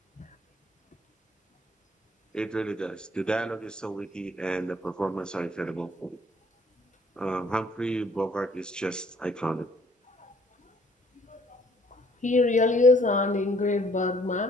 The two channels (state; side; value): normal; both; correlation 0.61